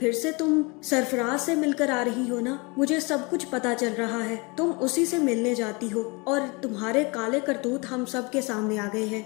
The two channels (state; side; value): quieter; right; 28.4 dB